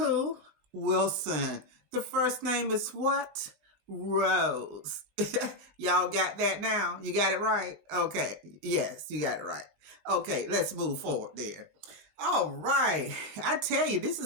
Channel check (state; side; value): late; left; 19 ms